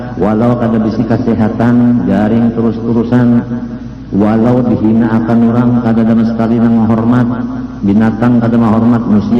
walau kada bisi kesehatan, garing terus-terusan, walau dihina akan orang, kada sama sekali nang menghormat, binatang kada menghormat,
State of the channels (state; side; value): identical; both; correlation 1.00